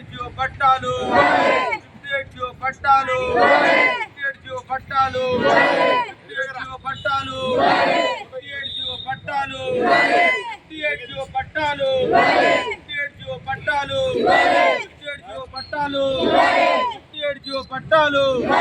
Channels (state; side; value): identical; both; correlation 1.00